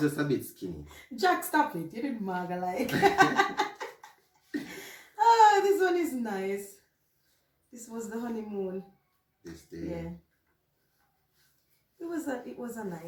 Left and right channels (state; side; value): identical; both; correlation 1.00